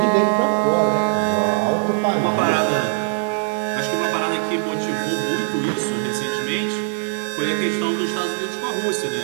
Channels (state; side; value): silent; left; 62 dB below the other